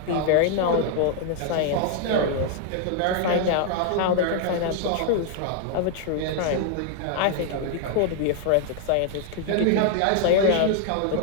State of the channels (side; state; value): both; different; correlation 0.00